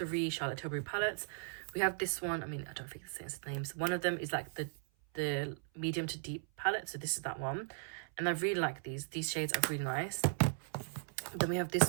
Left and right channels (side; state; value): left; silent; 53 dB below the other